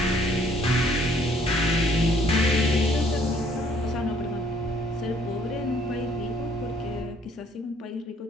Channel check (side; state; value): both; normal; correlation 0.62